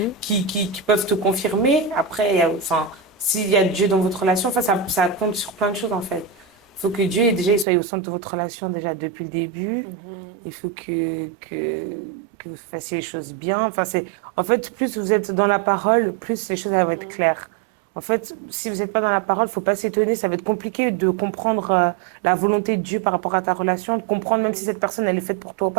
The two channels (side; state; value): left; drops out; at 7.7 s